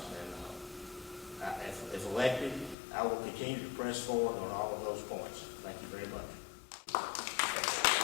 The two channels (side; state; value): right; drops out; at 2.8 s